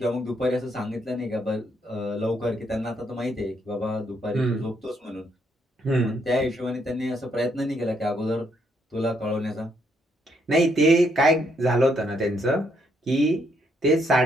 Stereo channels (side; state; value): both; normal; correlation 0.74